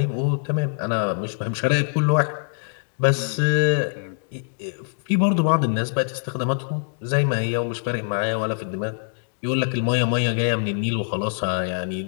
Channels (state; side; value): silent; right; digital silence